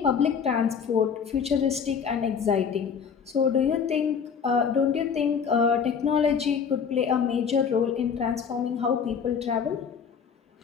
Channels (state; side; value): quieter; right; 6.7 dB